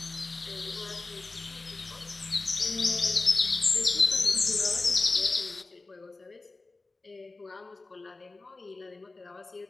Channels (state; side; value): quieter; right; 3.4 dB